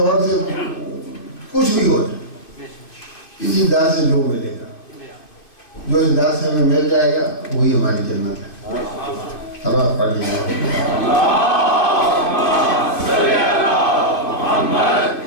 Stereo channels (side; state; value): right; late; 2.5 ms